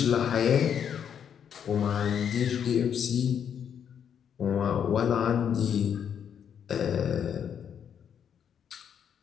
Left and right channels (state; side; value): quieter; right; 8.3 dB